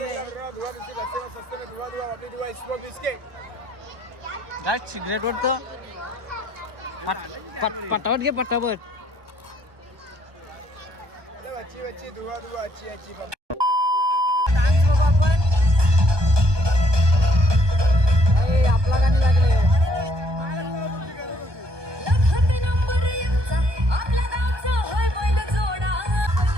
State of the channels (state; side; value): late; left; 1.2 ms